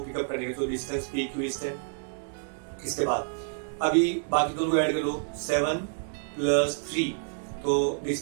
पिकअप करेंगे, तो डिस्टेंस PQ इज 10। इसके बाद अभी बाकी दोनों को ऐड कर लो, 7 + 3, तो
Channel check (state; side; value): silent; left; digital silence